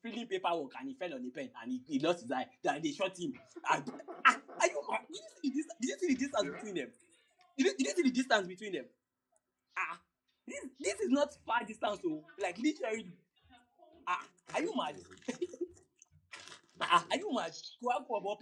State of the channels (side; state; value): both; identical; correlation 1.00